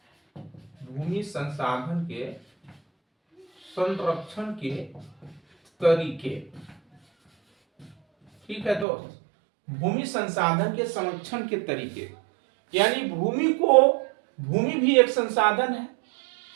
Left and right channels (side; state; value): left; drops out; at 8.8 s